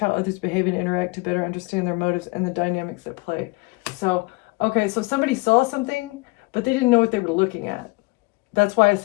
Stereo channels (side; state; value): right; quieter; 25.1 dB